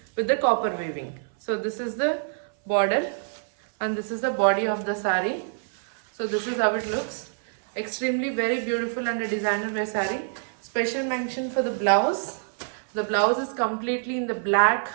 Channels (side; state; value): left; silent; 59 dB below the other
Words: with the copper weaving. So this is the border and this is the body of the sari. So this is how it looks. Extremely very beautiful and a designer wear saree. Special mention for the blouse. The blouse is completely in the black